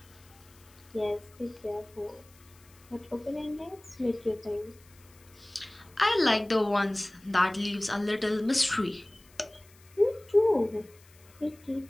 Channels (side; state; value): left; noise; hiss, 27 dB below the sound